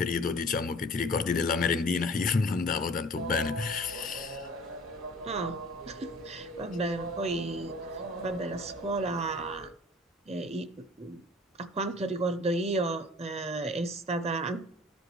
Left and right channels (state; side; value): normal; both; correlation 0.46